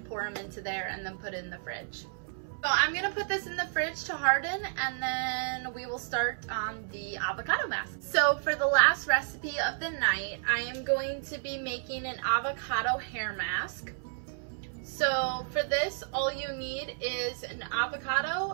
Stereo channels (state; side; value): silent; left; 57 dB below the other